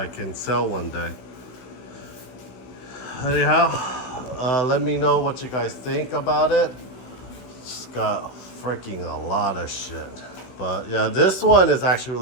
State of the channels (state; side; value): late; right; 16 ms